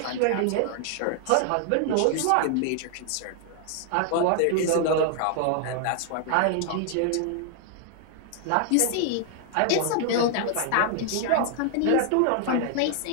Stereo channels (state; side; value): different; both; correlation 0.00